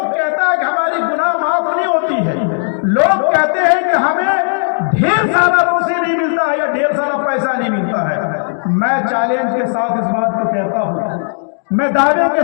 کہتا ہے کہ ہماری گناہ معاف نہیں ہوتی ہے، لوگ کہتے ہیں کہ ہمیں ڈھیر سارا روزی نہیں ملتا ہے یا ڈھیر سارا پیسہ نہیں ملتا ہے۔ میں چیلنج کے ساتھ اس بات کو کہتا ہوں، میں دعوے کے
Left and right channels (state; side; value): silent; right; digital silence